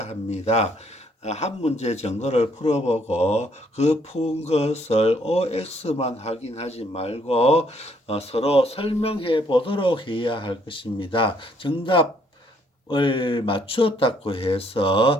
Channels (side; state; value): both; normal; correlation 0.67